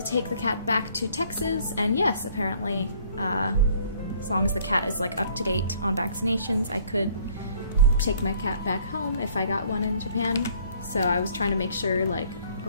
take the cat back to Texas? And yes, apparently, as long as the cat is like up to date on vaccinations, I could take my cat back home if I got one in Japan. So I was trying to make sure, like,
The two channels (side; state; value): both; inverted; correlation -0.59